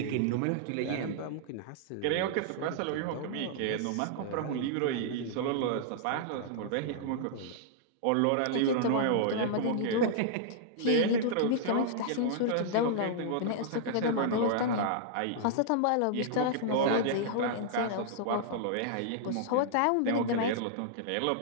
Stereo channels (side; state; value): both; different; correlation -0.01